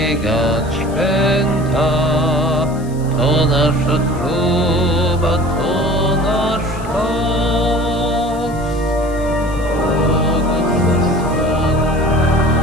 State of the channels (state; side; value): noise; left; hiss, 22 dB below the sound